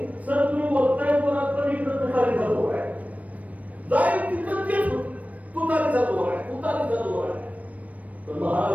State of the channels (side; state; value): left; late; 0.069 ms